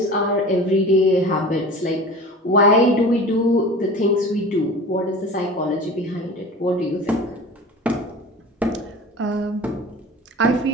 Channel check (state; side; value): normal; both; correlation 0.37